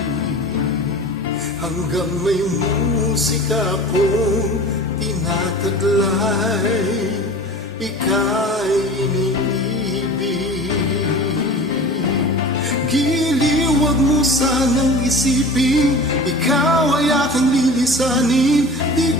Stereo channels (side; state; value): both; normal; correlation 0.38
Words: hanggang may musika akong tinataglay, ika'y iniibig. Giliw, wag mo sanang isipin, ikaw ay aking lilisanin. Di